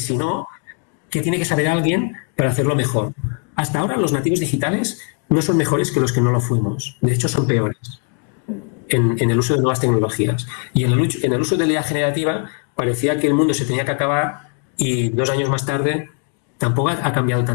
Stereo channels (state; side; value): quieter; right; 39.4 dB